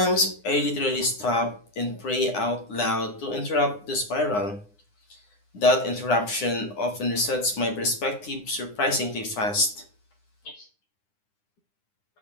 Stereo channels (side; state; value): right; late; 9.8 ms